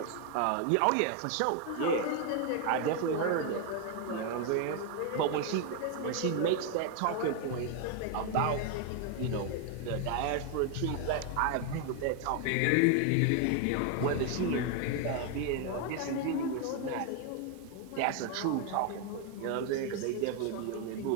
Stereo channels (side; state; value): both; different; correlation 0.01